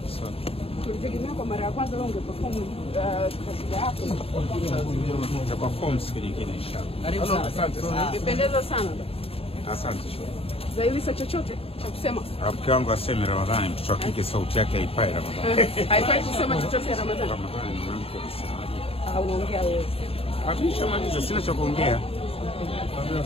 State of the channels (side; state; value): right; late; 0.28 ms